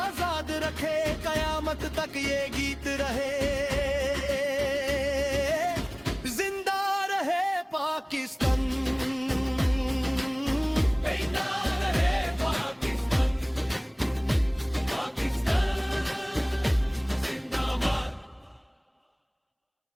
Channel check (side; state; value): both; identical; correlation 1.00